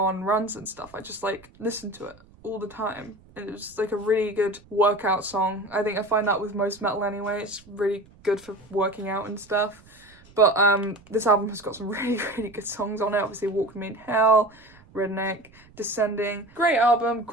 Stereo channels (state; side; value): noise; right; rumble, 26 dB below the sound